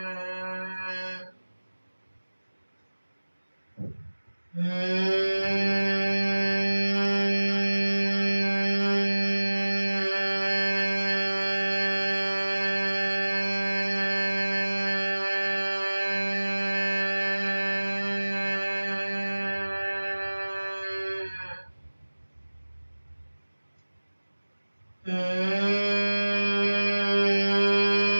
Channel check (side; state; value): both; inverted; correlation -1.00